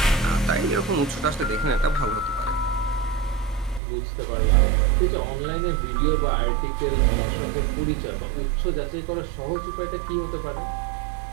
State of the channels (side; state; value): left; drops out; at 3.8 s